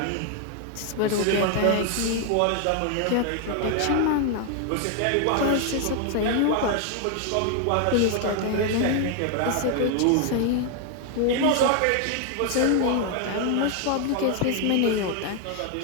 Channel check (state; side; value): different; both; correlation 0.00